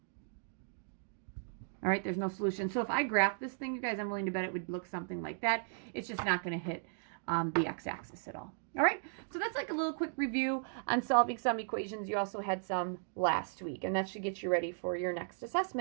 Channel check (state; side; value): silent; left; digital silence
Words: All right, there's no solution. So if I graph this thing, you guys, I'm willing to bet it would look something like that. It's just not going to hit the x-axis at all. All right, so that's like a little quick review on solving some equations. You also had some last week, and that should get you ready for your next